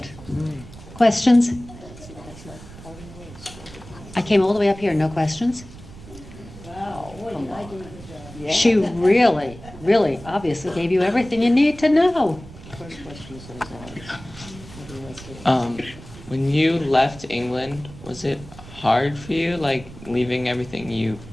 Questions? I came all the way up here, no questions? Wow, what am I doing? She really, really obviously gave you everything you need to know. First question is always When you left England, was it hard for you, like leaving everything you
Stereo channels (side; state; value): right; noise; rumble, 17 dB below the sound